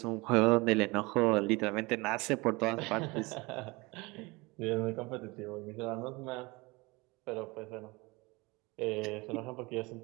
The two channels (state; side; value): quieter; left; 24.4 dB